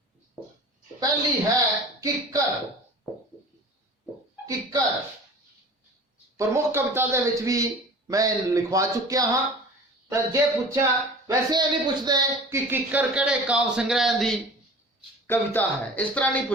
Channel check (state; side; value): normal; both; correlation 0.41